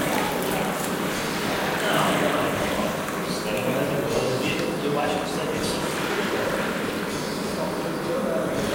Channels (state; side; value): identical; both; correlation 1.00